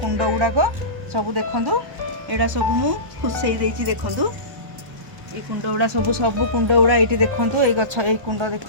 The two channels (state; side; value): late; left; 1.2 ms